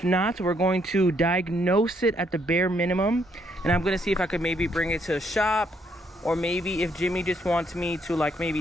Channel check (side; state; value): both; normal; correlation 0.72